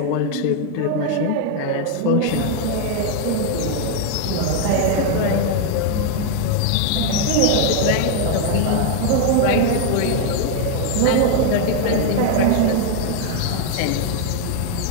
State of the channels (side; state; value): both; different; correlation 0.00